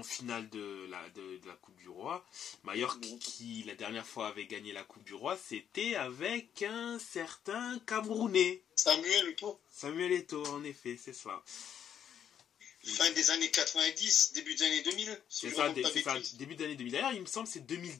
finale de la Coupe du Roi. Majorque, qui la dernière fois avait gagné la Coupe du Roi, c'était avec un certain Camerounais. Samuel Eto'o. Samuel Eto'o, en effet, c'est ça. Fin des années 90, début des années 2000. C'est ça, début des années 2000. D'ailleurs, il me semble que c'est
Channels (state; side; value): quieter; right; 9.0 dB